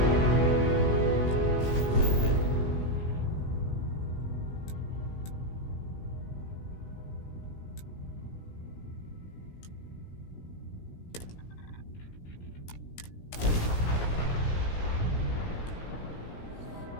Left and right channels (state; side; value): late; right; 17 ms